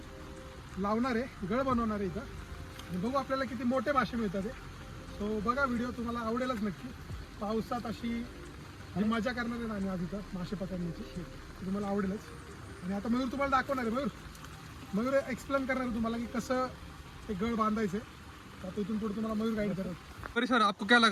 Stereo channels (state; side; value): identical; both; correlation 1.00